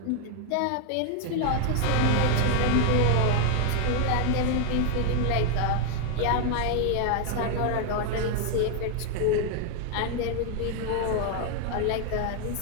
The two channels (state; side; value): different; both; correlation 0.00